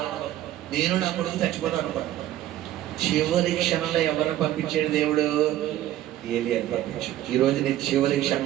ఉండదు, నేను నా కొడుకు చచ్చిపోతాను అనుకోండి. చివరి క్షణంలో ఎవరిని పంపించాడు దేవుడు, ఏలియాని పంపించాడు. ఈ రోజు నేను చివరి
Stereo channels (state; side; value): quieter; left; 13.2 dB